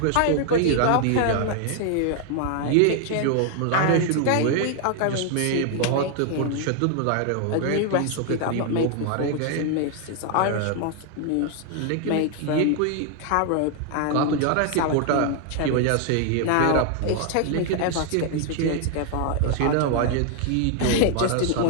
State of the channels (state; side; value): different; both; correlation 0.00